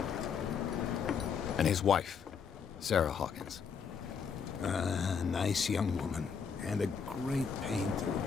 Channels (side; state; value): right; quieter; 6.4 dB